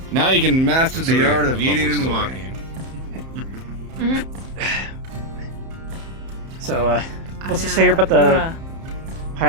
Now you can master the art of eating and walking. So, what's to say here about the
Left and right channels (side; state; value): left; late; 31 ms